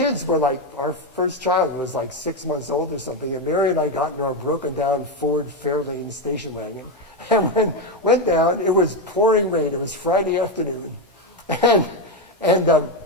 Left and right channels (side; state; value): both; normal; correlation 0.09